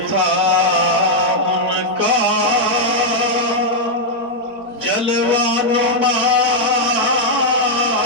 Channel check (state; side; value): late; left; 4.8 ms